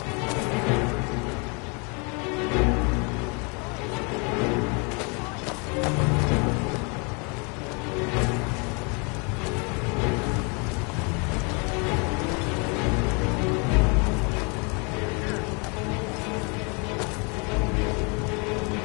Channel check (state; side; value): quieter; right; 33.0 dB